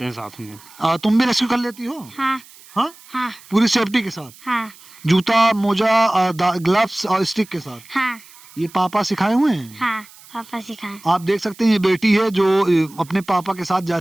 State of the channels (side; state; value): right; noise; hiss, 23 dB below the sound